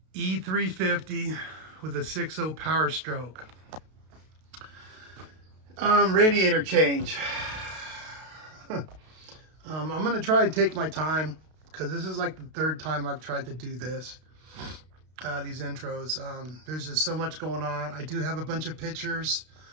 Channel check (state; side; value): late; left; 32 ms